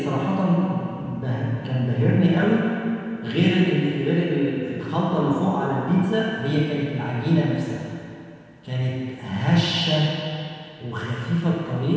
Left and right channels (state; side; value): identical; both; correlation 1.00